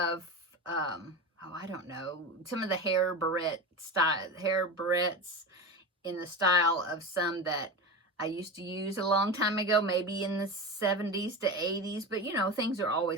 oh, I don't know, some of the hair barrettes in the style of some that I used to use a long time ago, maybe in the 70s to 80s. But, you know, things are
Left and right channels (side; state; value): both; normal; correlation 0.24